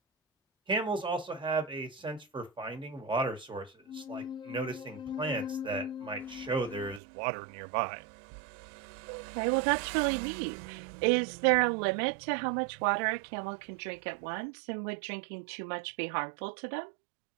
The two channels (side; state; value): left; drops out; at 7.0 s